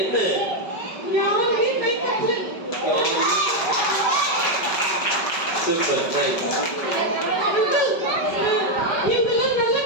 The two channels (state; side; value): late; right; 5.2 ms